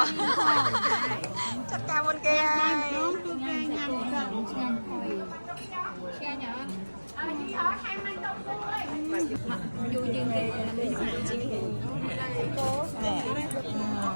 ៎ចាត់ការមុនគេហើយញ៉ាំឆ្ងាញ់ហុយឆ្ងាញ់អត់យូរជាងគេ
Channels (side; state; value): both; inverted; correlation -1.00